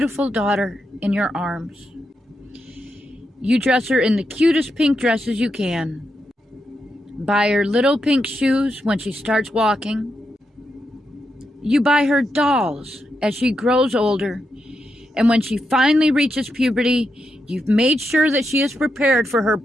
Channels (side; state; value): both; normal; correlation 0.84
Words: daughter in your arms. You dress her in the cutest pink dresses you can. Buy her little pink shoes when she starts walking. You buy her dolls as she grows older. And when she finally reaches puberty, you've made sure that she is prepared for her